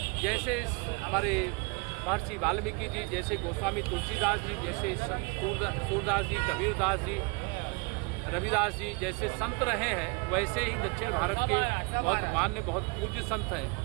जैसे हमारे महर्षि वाल्मीकि जी, जैसे गोस्वामी तुलसीदास जी, जैसे सूरदास जी, कबीरदास जी, रविदास जी जैसे संत रहे हैं, वैसे ही दक्षिण भारत के बहुत मान्य, बहुत पूज्य संत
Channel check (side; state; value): left; quieter; 29.6 dB